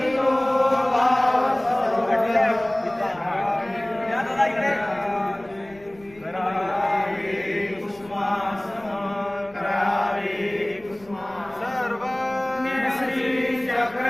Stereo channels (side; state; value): left; noise; rumble, 26 dB below the sound